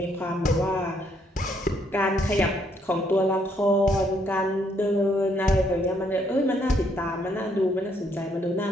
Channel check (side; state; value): both; normal; correlation 0.71